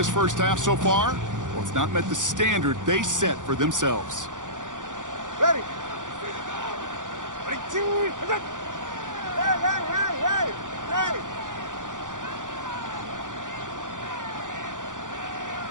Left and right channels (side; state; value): left; late; 0.87 ms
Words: first half so far, well, it's not met the standard they set for themselves. Ready. Ready. Hey, hey, hey, hey, hey.